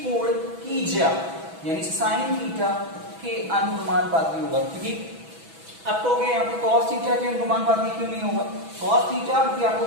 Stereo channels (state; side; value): late; left; 6.1 ms